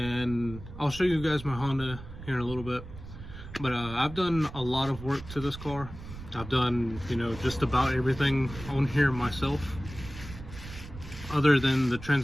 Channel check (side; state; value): right; noise; rumble, 13 dB below the sound